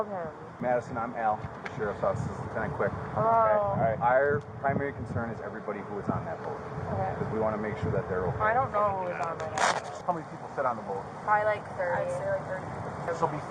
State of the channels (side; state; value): both; identical; correlation 1.00